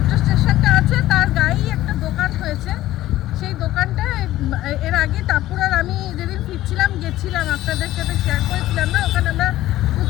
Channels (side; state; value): right; quieter; 15.0 dB